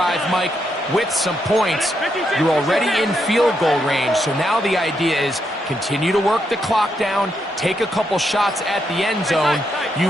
Mike, with some points. You're already in field goal range, so now the idea is continue to work the clock down, take a couple shots at the end zone. You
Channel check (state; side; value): normal; both; correlation 0.80